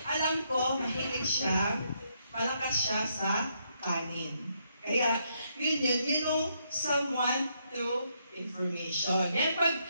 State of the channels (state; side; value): inverted; both; correlation -0.76